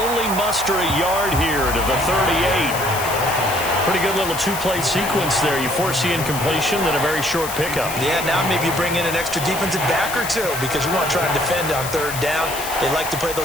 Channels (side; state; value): left; noise; hiss, 8 dB below the sound